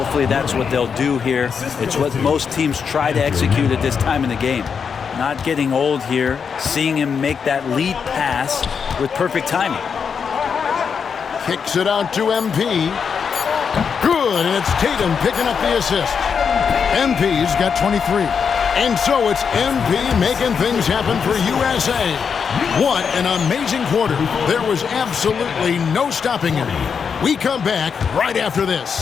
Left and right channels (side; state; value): right; quieter; 6.4 dB